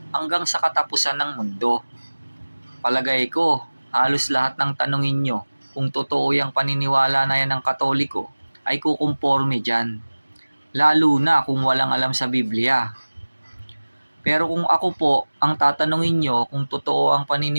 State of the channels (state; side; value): inverted; both; correlation -1.00